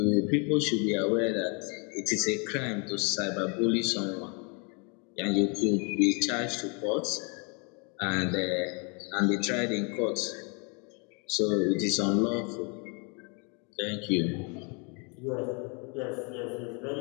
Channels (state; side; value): quieter; right; 34.3 dB